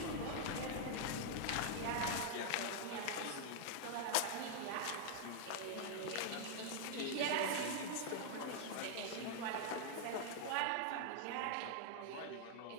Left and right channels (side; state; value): both; different; correlation -0.01